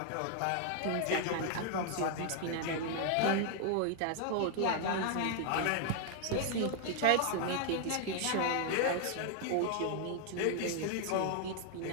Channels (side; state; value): both; different; correlation 0.00